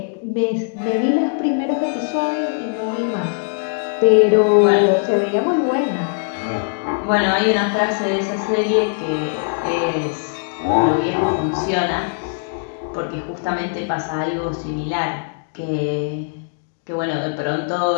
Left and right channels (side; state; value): right; silent; digital silence